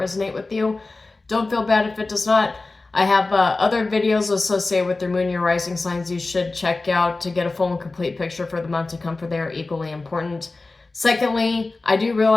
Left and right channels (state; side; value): quieter; right; 3.4 dB